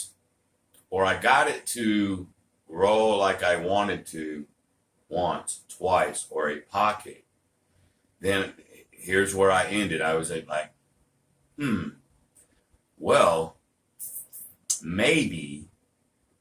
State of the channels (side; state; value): both; identical; correlation 1.00